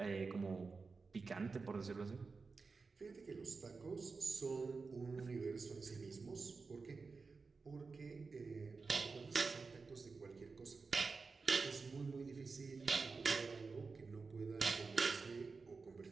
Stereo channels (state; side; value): quieter; left; 4.4 dB